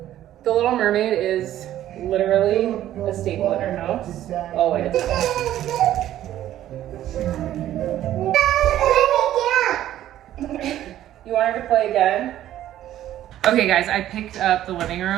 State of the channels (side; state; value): left; quieter; 12.6 dB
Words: The Little Mermaid is literally a staple in our house. Always. You want her to play again? Okay guys, I picked up the living